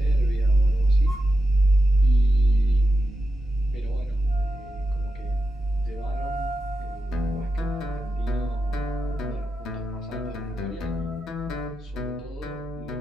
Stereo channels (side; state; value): both; normal; correlation 0.89